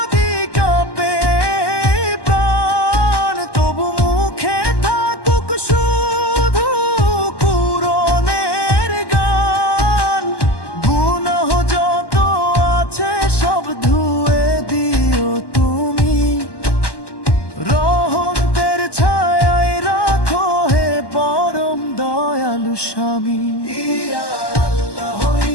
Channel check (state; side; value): late; right; 1.1 ms